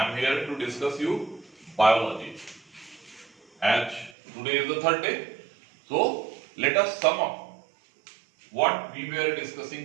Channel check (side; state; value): left; drops out; at 4.2 s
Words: am here to discuss you biology. As today is the third day, so let us sum up what we were